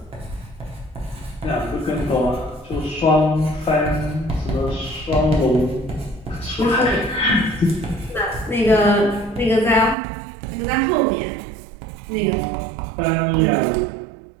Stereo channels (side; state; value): left; drops out; at 10.0 s